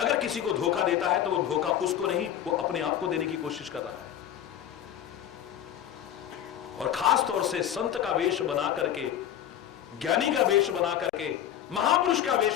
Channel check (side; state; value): right; quieter; 10.5 dB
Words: किसी को धोखा देता है तो वो धोखा उसको नहीं, वो अपने आप को देने की कोशिश कर रहा है। और खास तौर से संत का वेश बना करके, ज्ञानी का वेश बना करके, महापुरुष का